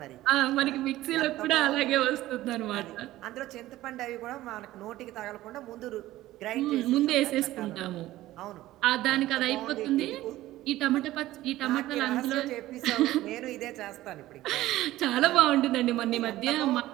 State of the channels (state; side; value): quieter; left; 15.8 dB